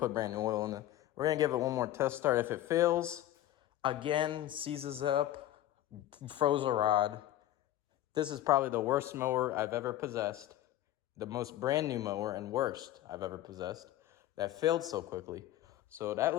oil in it. We're gonna give it one more test start. If it fails, again, seizes up, froze a rod. This is probably the worst mower I've ever possessed. The most brand new mower and worst I've ever possessed that failed so quickly. So that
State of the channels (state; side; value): quieter; right; 13.5 dB